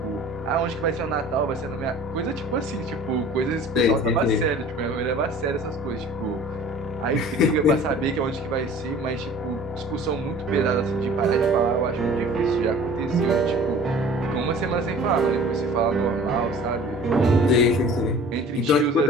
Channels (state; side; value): normal; both; correlation 0.46